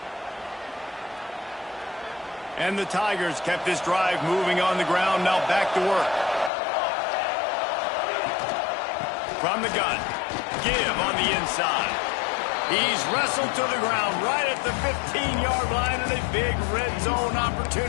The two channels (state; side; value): drops out; right; at 6.5 s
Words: And the Tigers kept this drive moving on the ground. Now back to work. From the gun. Give on the inside. He's wrestled to the ground right at the 15-yard line, and a big red zone